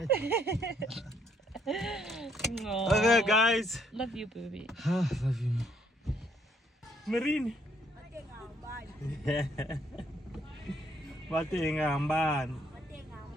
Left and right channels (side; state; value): both; normal; correlation 0.69